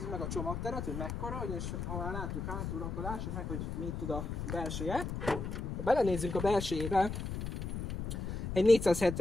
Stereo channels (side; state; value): left; noise; rumble, 4 dB below the sound